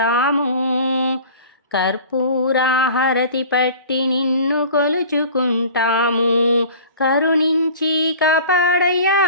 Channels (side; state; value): both; inverted; correlation -0.42